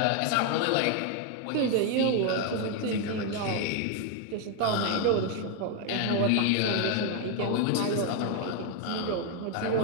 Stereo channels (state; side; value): different; both; correlation 0.01